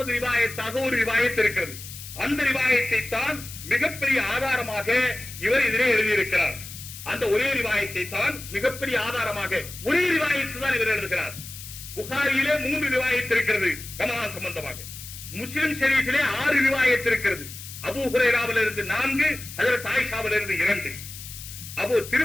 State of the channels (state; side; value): noise; left; hiss, 13 dB below the sound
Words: ரிவாயத்தாக ஒரு ரிவாயத் இருக்கிறது. அந்த ரிவாயத்தை தான் மிகப்பெரிய ஆதாரமாக இவர் இதிலே எழுதியிருக்கிறார். அந்த ஒரே ரிவாயத்தை தான் மிகப்பெரிய ஆதாரமாக, ஒரே ரிவாயத்து தான் இவர் எழுதுகிறார். புகாரியிலே 3 ரிவாயத் இருக்கிறது ரமலான் சம்பந்தமாக. முஸ்லிம் ஷரீஃபிலே 6 ரிவாயத் இருக்கிறது. அபூ ஹுரைராவிலிருந்து 4, ஹஜ்ரத் ஆயிஷாவிலிருந்து 2.